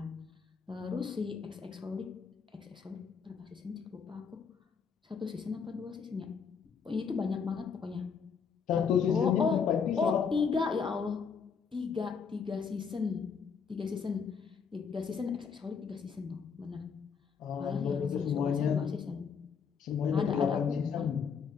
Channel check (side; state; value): right; quieter; 6.1 dB